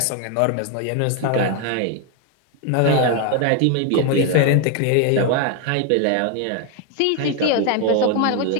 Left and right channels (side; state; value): both; different; correlation 0.01